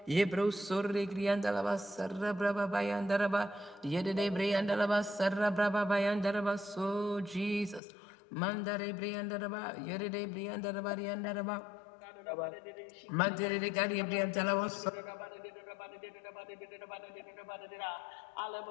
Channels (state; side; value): drops out; right; at 7.8 s